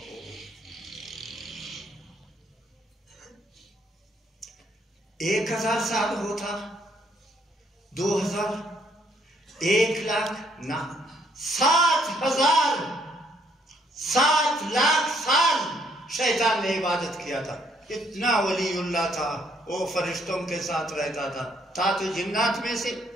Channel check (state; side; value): normal; both; correlation 0.68